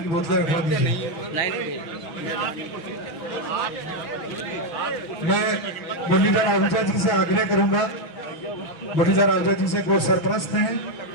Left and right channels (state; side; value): late; right; 6.1 ms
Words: की बोतलें रखवा दीजिए। मैं मुरलीधर आहूजा जी से आग्रह करूंगा, मुरलीधर आहूजा जी से वो सरपरस्त हैं,